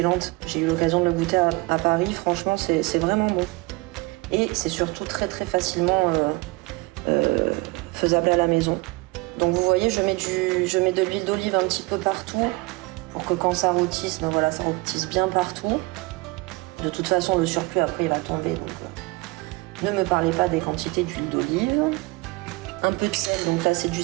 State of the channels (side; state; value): left; quieter; 24.1 dB